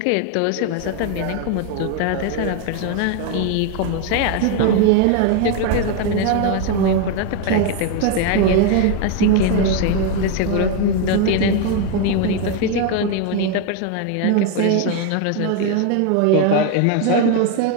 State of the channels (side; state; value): both; different; correlation 0.01